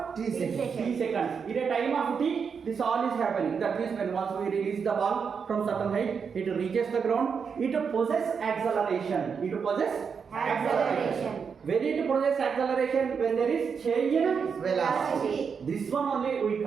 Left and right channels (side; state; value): left; quieter; 6.2 dB